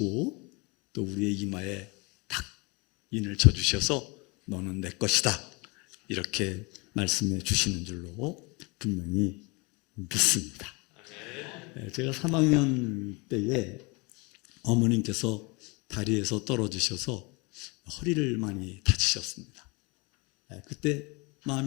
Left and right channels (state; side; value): quieter; right; 28.2 dB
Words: 또 우리의 이마에 탁 인을 쳐주셔서 너는 내 것이다, 이렇게 말씀해 주시는 줄로 분명히 믿습니다. 제가 3학년 때에 어머님께서 다리에서 떨어지셔서 허리를 많이 다치셨습니다. 그때